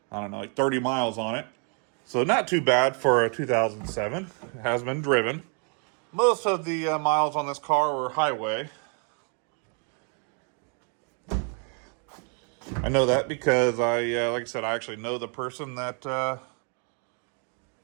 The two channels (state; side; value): quieter; left; 39.6 dB